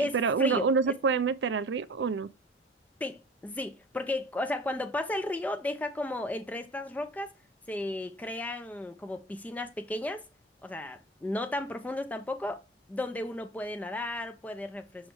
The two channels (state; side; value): normal; both; correlation 0.41